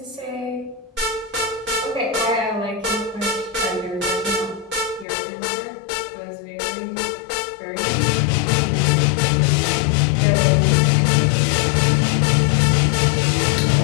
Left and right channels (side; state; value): right; drops out; at 5.1 s